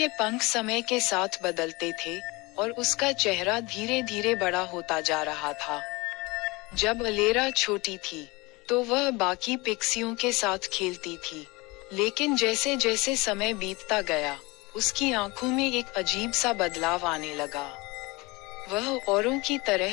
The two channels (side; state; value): right; quieter; 24.1 dB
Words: पंख समय के साथ बदलते थे और उसका चेहरा धीरे धीरे बड़ा होता जा रहा था। जब अलेरा छोटी थी तो वह बाकी पिक्सियों के साथ खेलती थी, लेकिन जैसे जैसे समय बीतता गया उसकी आंखों में एक अजीब सा बदलाव आने लगा। वह औरों की